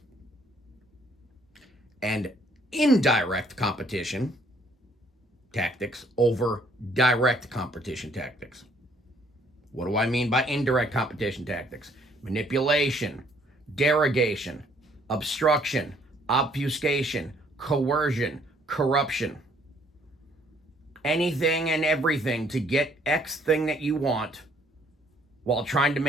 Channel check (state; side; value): normal; both; correlation 0.63